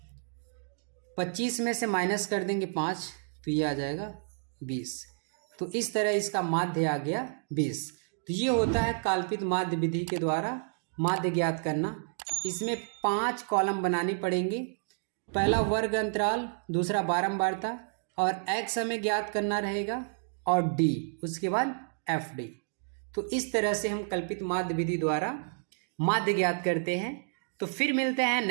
25 में से माइनस कर देंगे 5, तो ये आ जाएगा 20। तो इस तरह इसका माध्य आ गया 20। तो ये होता है कल्पित माध्य विधि के द्वारा माध्य ज्ञात करना। इसमें 5 कॉलम बनाने पड़ेंगे। पहला वर्ग अंतराल, दूसरा बारंबारता, और x हमें ज्ञात करना रहेगा, और d, उसके बाद एफ डी। तो इस तरह से हम कल्पित माध्य विधि द्वारा माध्य ज्ञात करते हैं। तो फिर मिलते हैं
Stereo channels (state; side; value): silent; left; digital silence